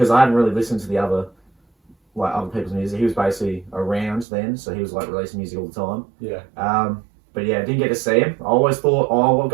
I hadn't really listened to the other people's music. He was basically around then, so he was like releasing music all the time. Yeah. But yeah, didn't get to see him. I always thought, oh, I'll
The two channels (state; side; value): drops out; left; at 4.2 s